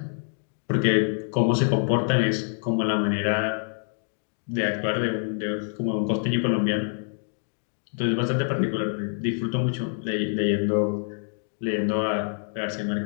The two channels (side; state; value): right; silent; 61 dB below the other